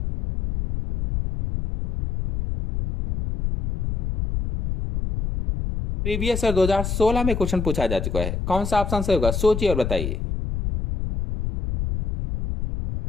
Previous year 2016 में क्वेश्चन पूछा जा चुका है। कौन सा ऑप्शन सही होगा? सोचिए और बताइए।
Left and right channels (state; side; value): noise; left; rumble, 3 dB below the sound